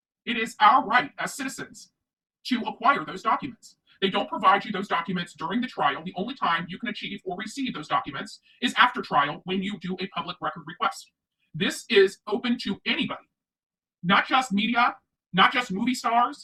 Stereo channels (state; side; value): identical; both; correlation 1.00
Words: It is our right as citizens to acquire those documents. They don't provide you those documents during the trial. The only time you can achieve or receive those documents is after trial when you do a public record request. This is open to anybody, not just media, not just movie